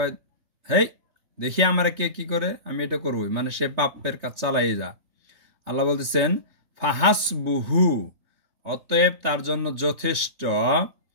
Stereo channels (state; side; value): late; left; 3.3 ms